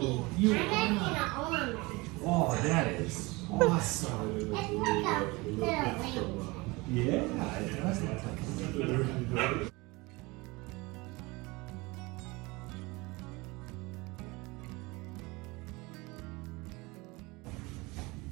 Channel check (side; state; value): left; quieter; 24.0 dB